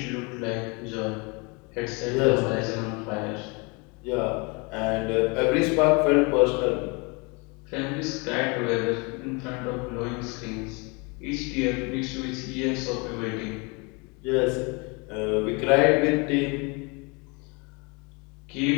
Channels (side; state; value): right; quieter; 29.9 dB